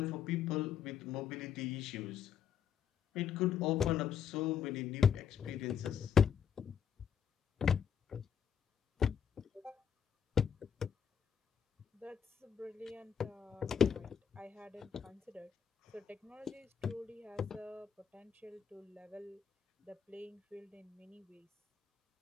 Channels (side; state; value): right; quieter; 7.9 dB